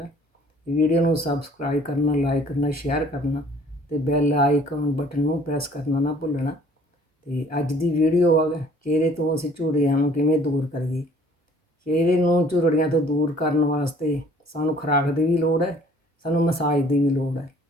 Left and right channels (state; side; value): normal; both; correlation 0.56